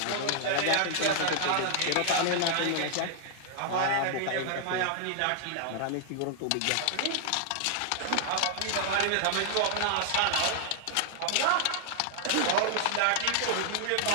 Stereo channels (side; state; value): both; different; correlation -0.01